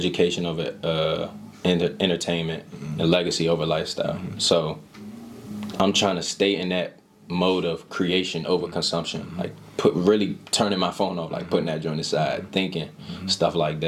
over entertainment, and legacy over lifestyle." So I'm trying to stay in that mode of creation over consumption, like really turning my phone off, like putting that joint aside, thinking stuff like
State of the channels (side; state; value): both; identical; correlation 1.00